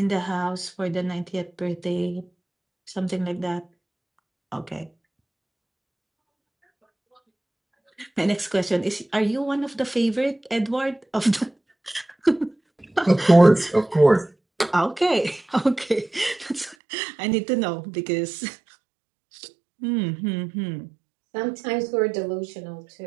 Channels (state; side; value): drops out; left; at 16.8 s